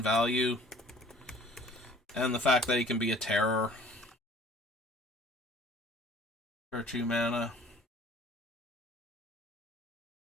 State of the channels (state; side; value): normal; both; correlation 0.51